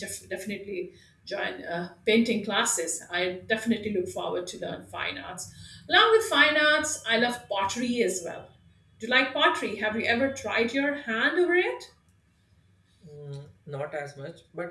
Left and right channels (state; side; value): identical; both; correlation 1.00